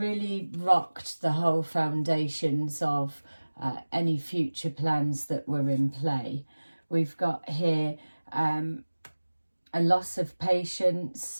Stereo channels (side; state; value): both; inverted; correlation -1.00